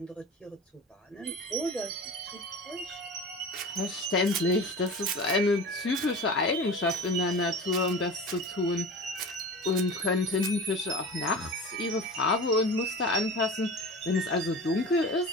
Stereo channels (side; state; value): both; normal; correlation 0.34